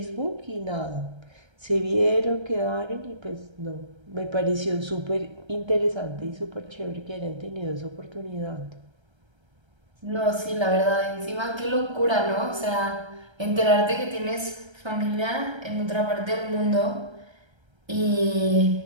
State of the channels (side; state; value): left; late; 1.3 ms